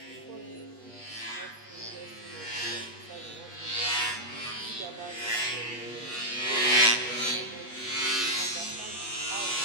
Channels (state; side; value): late; right; 8.3 ms